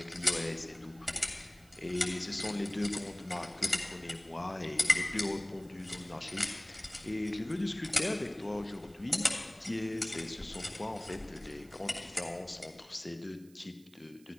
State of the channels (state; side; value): noise; right; hiss, 27 dB below the sound